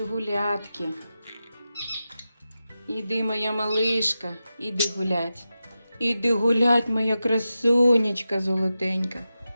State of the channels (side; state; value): both; inverted; correlation -0.92